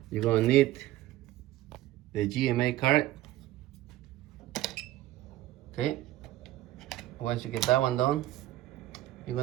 you're gonna need the GMA card. Okay, once you get that one done, you're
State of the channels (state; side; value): quieter; left; 15.3 dB